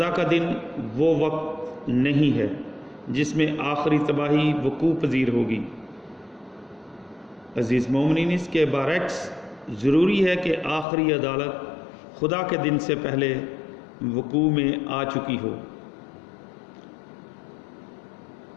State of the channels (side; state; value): right; drops out; at 10.9 s